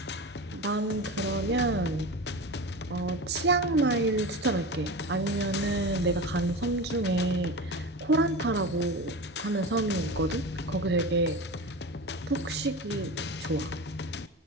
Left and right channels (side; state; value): both; normal; correlation 0.27